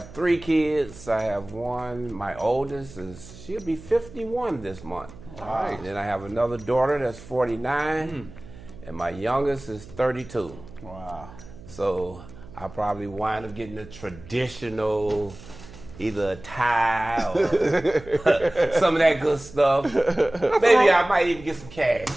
3 kids. I have one. My oldest she'll be 51 this month. All right. And then I have another daughter that's 49, and my youngest is 32. Wow. So I probably wind up getting a traditional, either a tie or some of that good stuff. Maybe I might even get some cash.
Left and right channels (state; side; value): noise; right; hum, 18 dB below the sound